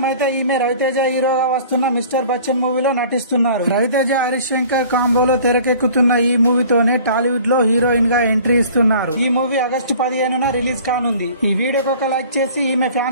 అయితే ఈమె రవితేజ హీరోగా వస్తున్న మిస్టర్ బచ్చన్ మూవీలో నటిస్తున్నారు. రవితేజ హరీష్ శంకర్ కాంబోలో తెరకెక్కుతున్న ఈ మూవీతోనే టాలీవుడ్ లో హీరోయిన్ గా ఎంట్రీ ఇస్తున్నారు. ఈ మూవీ ఆగస్టు 15న రిలీజ్ కానుంది. ఈ వీడియోకి ఒక లైక్ చేసి ఈమె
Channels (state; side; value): inverted; both; correlation -0.48